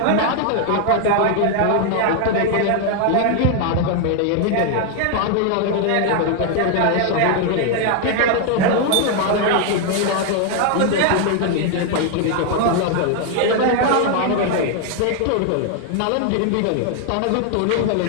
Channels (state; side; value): different; both; correlation 0.00